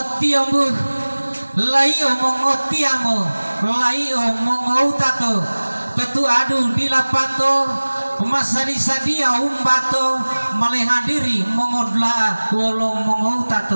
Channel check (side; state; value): both; inverted; correlation -1.00